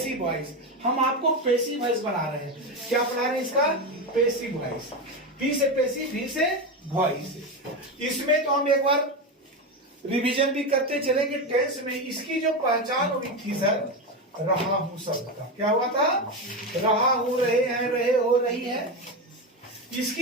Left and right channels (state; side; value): normal; both; correlation 0.15